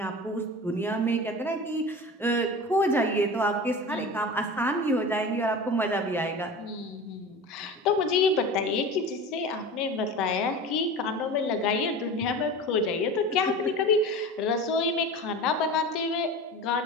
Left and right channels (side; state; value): both; normal; correlation 0.33